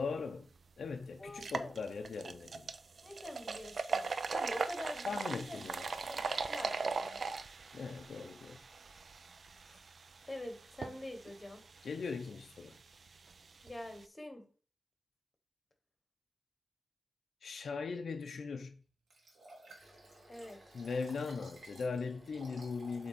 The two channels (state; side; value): normal; both; correlation 0.86